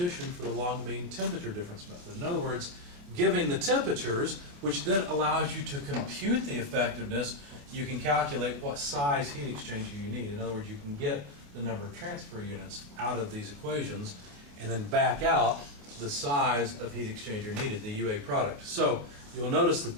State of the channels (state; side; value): late; left; 28 ms